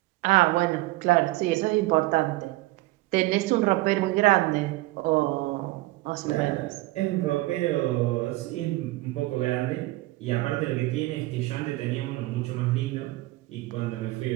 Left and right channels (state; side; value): quieter; left; 19.5 dB